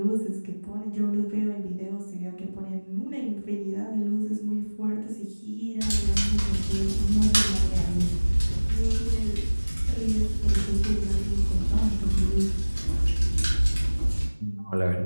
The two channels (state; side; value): inverted; both; correlation -1.00